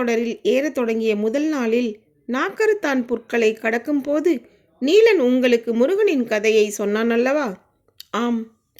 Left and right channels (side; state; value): both; identical; correlation 1.00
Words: ஏறத் தொடங்கிய முதல் நாளில் நாக்கருத்தான் புற்களை கடக்கும் போது நீலன் உங்களுக்கு முருகனின் கதையை சொன்னான் அல்லவா? ஆம்.